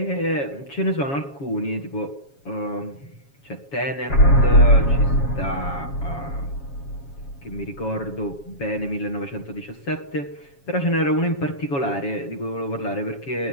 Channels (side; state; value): right; late; 7.2 ms